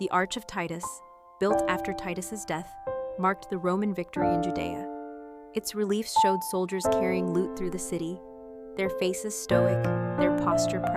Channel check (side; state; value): both; identical; correlation 1.00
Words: Arch of Titus, built after Titus's death, marked the Roman victory in Judea. Its reliefs showed soldiers carrying loot through the city, their faces stoic, their posture